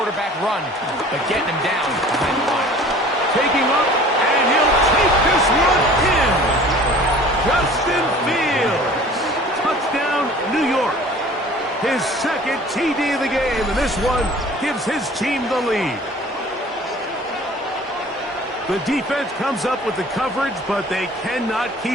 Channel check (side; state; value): both; normal; correlation 0.47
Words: run, but getting him down behind the line. Taking up, and he'll take this one in. Justin Fields. Touchdown, New York. His 2nd TD of the game, and this one gives his team the lead. The defense comes up with the coverage, but they cannot